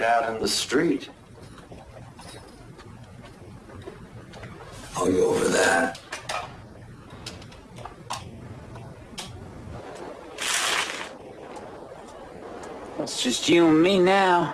in the street. I'll go over that. It's just you and me now.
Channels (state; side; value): identical; both; correlation 1.00